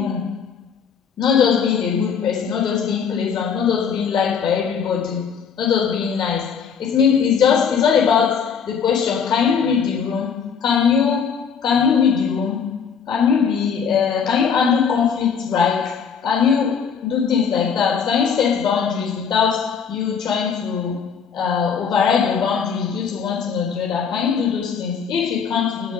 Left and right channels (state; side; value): quieter; right; 6.7 dB